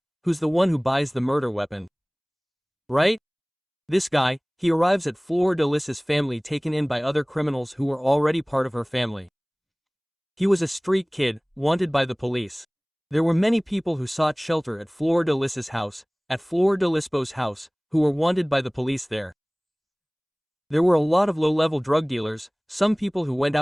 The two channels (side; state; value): both; identical; correlation 1.00